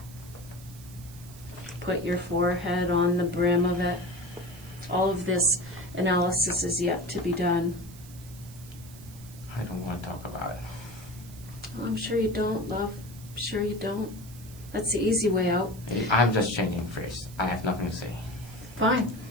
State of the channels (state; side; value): noise; right; hiss, 20 dB below the sound